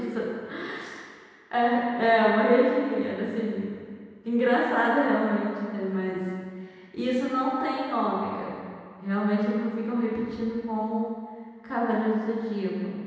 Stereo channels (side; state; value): both; identical; correlation 1.00